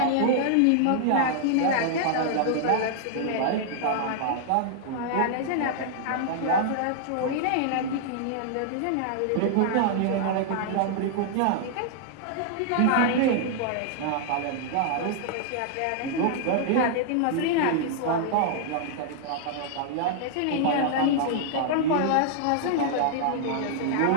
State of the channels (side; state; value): both; different; correlation -0.01